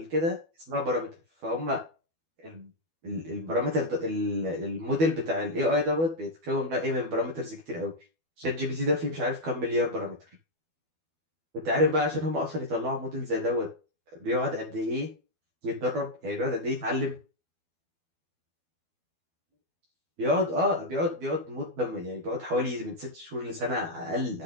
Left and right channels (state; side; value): late; left; 12 ms